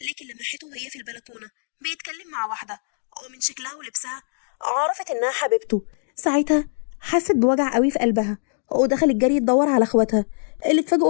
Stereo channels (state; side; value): silent; right; digital silence